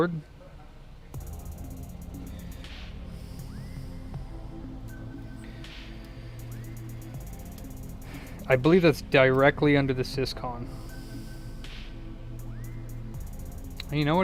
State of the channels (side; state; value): both; identical; correlation 1.00